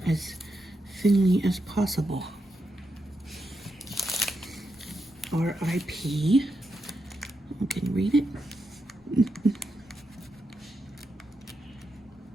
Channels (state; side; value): normal; both; correlation 0.85